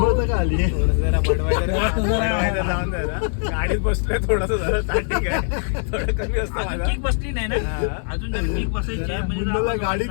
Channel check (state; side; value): silent; right; 64 dB below the other